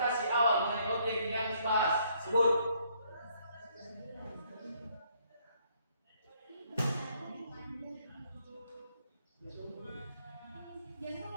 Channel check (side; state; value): both; inverted; correlation -0.68